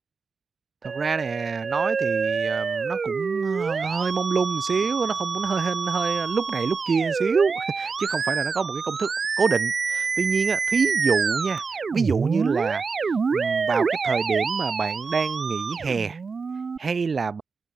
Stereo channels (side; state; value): left; quieter; 4.9 dB